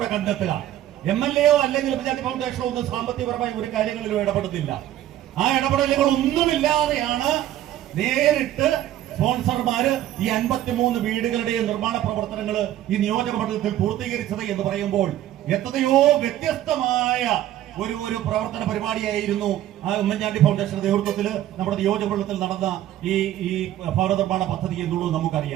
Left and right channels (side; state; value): left; quieter; 12.9 dB